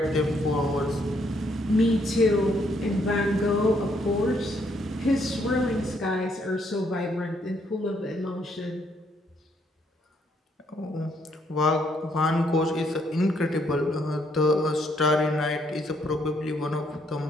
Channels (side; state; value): both; normal; correlation 0.71